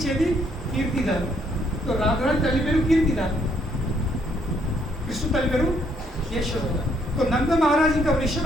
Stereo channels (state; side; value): normal; both; correlation 0.70